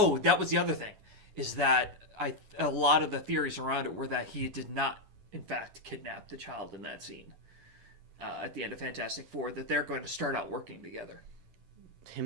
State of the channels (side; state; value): left; late; 11 ms